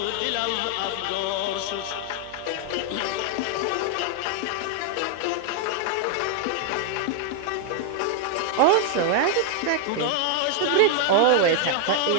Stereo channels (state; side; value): different; both; correlation 0.00